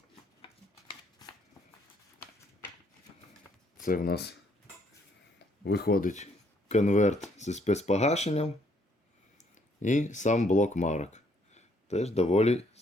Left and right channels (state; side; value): normal; both; correlation 0.68